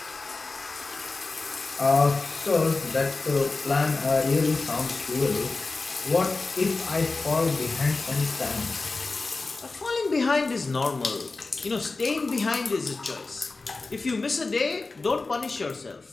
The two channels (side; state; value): right; quieter; 3.7 dB